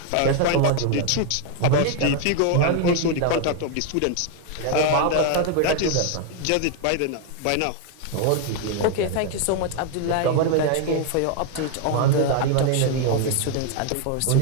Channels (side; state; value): both; different; correlation 0.00